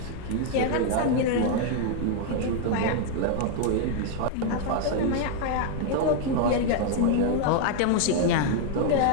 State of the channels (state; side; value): different; both; correlation 0.00